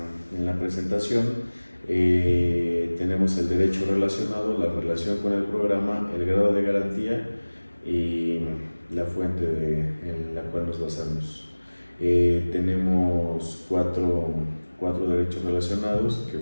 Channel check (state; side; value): inverted; both; correlation -1.00